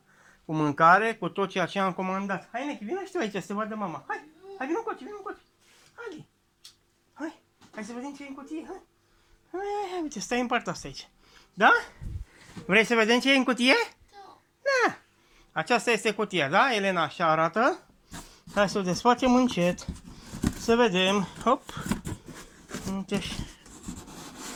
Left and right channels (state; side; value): identical; both; correlation 1.00